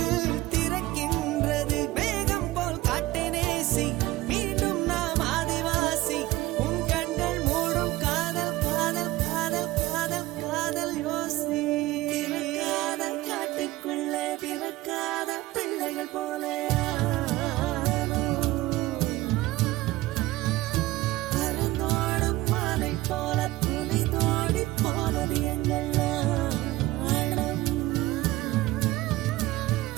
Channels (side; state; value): left; quieter; 17.9 dB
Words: திறக்கின்றது. மேகம் போல் காட்டை நேசி, மீண்டும் நாம் ஆதிவாசி. உன் கண்கள் மூடும் காதல் காதல் காதல் காதல் காதல் யோசி. திறக்காத காட்டுக்குள்ளே பிறக்காத பிள்ளைகள் போல பறந்தோடும் மாலை போல துணி தோடி போனது எங்கள் நாணம்.